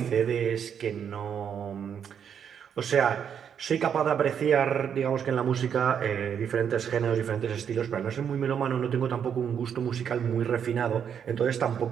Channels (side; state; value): left; quieter; 8.0 dB